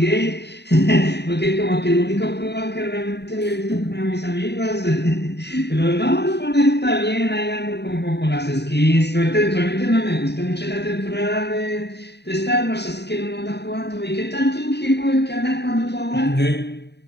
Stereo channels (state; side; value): late; right; 0.49 ms